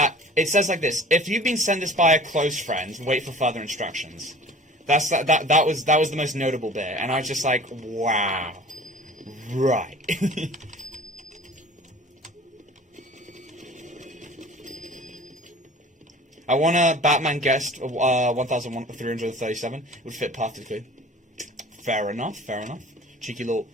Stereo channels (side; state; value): both; normal; correlation 0.44